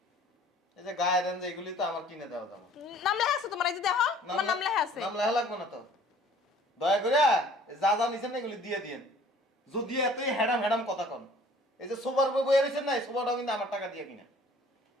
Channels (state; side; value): normal; both; correlation 0.53